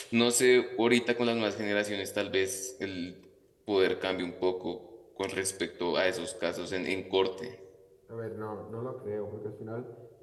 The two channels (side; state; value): both; identical; correlation 1.00